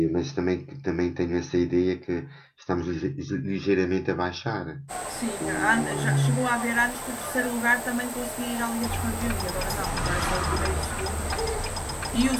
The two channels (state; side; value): identical; both; correlation 1.00